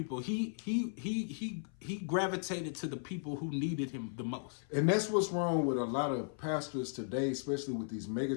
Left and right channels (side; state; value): right; silent; 54 dB below the other